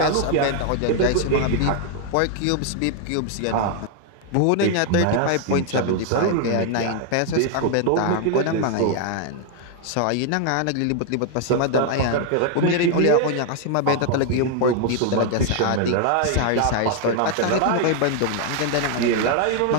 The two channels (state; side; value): different; both; correlation 0.00